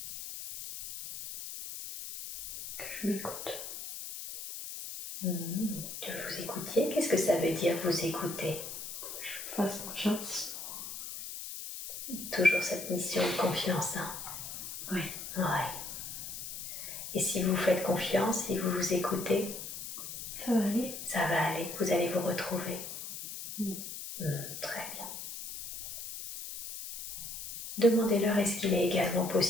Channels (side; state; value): left; noise; hiss, 8 dB below the sound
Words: Que je m'écoute. Que vous écoutiez, qu'est-ce que ça veut dire vous écouter? Je fasse confiance. Toujours cette mission de confiance, hein? Oui. Ouais. Et si vous faites confiance, si vous vous écoutez, ça va aller. Ça va aller, vous allez vous retrouver. Très bien. Demandez-leur est-ce qu'il est également